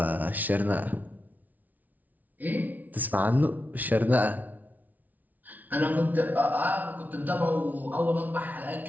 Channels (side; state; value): left; late; 0.077 ms